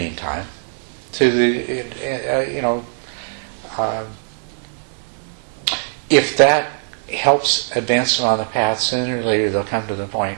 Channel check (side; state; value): left; silent; 65 dB below the other